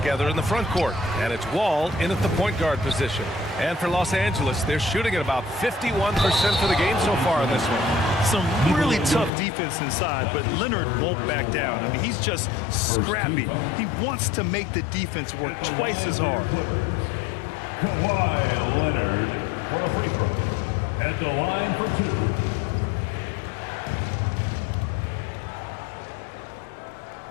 in the front court. And it's Wall in at the point guard position. And for Los Angeles, they're shooting at about 51% for the game so far in this one. Some really tough defense inside, but Leonard won't back down. I mean, he's just scrappy. He wants to make the defense work twice as hard. Kawhi Leonard for a free throw. At the line for two.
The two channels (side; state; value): right; drops out; at 9.3 s